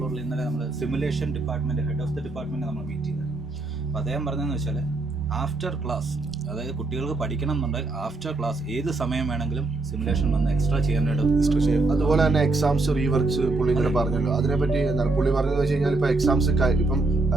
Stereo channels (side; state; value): left; quieter; 3.3 dB